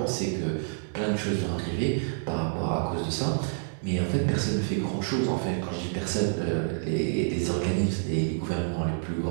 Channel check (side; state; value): left; silent; digital silence